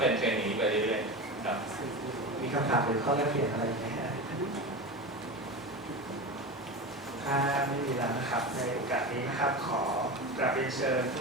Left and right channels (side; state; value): both; normal; correlation 0.25